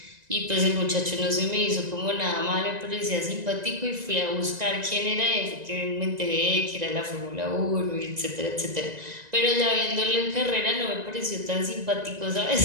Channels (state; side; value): late; left; 1.9 ms